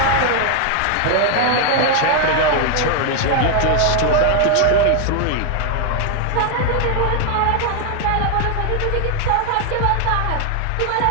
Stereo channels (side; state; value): both; different; correlation 0.00